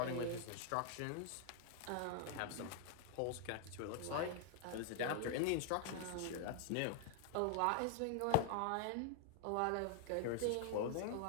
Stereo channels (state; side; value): different; both; correlation 0.00